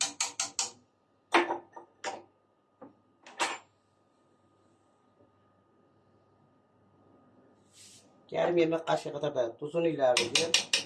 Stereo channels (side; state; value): both; identical; correlation 1.00